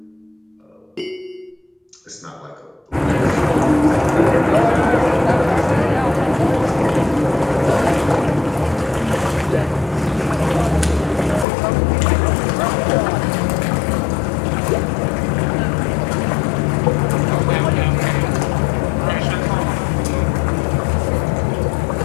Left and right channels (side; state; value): right; drops out; at 11.5 s